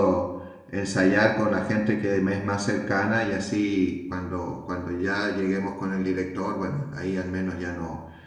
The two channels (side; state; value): both; identical; correlation 1.00